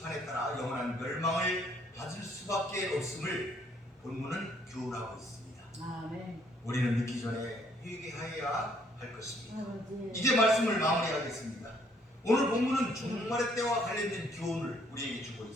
따라 영원한 멸망을 받을 수밖에 없음을 본문은 교훈하고 있습니다. 아멘. 우리는 늦기 전에 회개하여야 할 것입니다. 이제 말씀을 마무리하겠습니다. 오늘 본문은 종말의 때와 관련된 교훈을 우리에게 주고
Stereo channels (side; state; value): both; normal; correlation 0.66